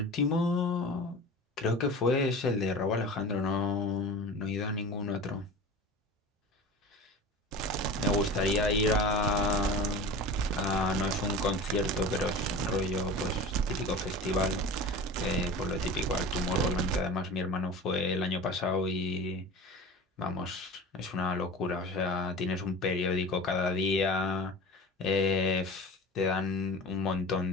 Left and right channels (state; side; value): normal; both; correlation 0.34